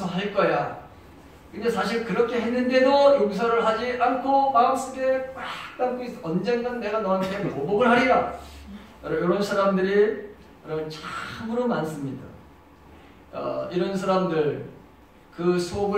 거야. 근데 사실 그렇게 했는데도 용서를 하지 않고 마음속에 꽉 담고 있어. 언젠간 내가 너한테 보복을 하리라. 이런 사람들이 참으로 많습니다. 이런 사람들, 그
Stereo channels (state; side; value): identical; both; correlation 1.00